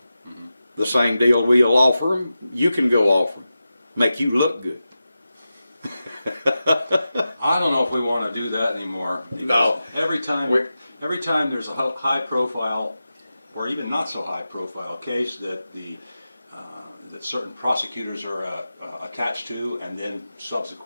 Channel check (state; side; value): inverted; both; correlation -0.92